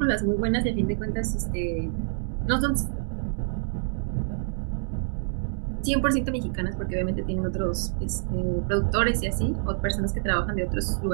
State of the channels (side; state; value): left; silent; digital silence